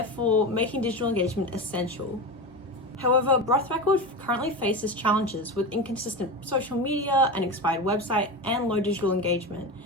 making digital engagement essential. However, Broth Records currently faces challenges with inconsistent social media, an expired website, and low digital engagement,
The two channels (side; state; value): both; normal; correlation 0.23